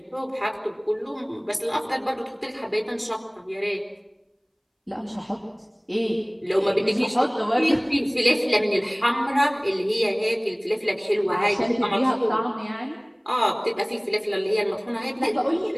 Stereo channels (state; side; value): identical; both; correlation 1.00